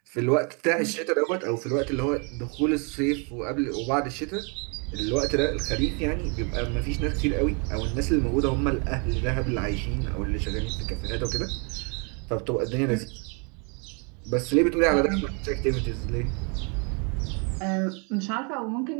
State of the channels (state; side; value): quieter; left; 35.7 dB